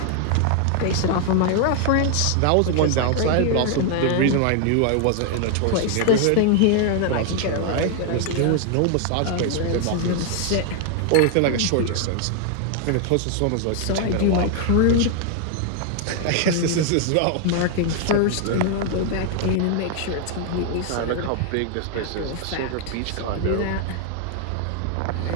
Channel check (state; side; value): different; both; correlation 0.00